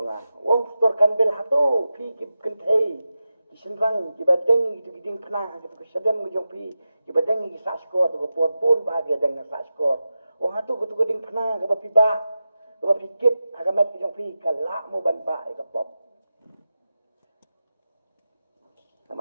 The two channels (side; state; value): both; inverted; correlation -0.92